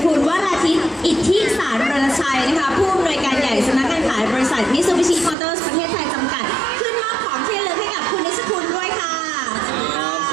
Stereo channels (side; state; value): left; drops out; at 5.4 s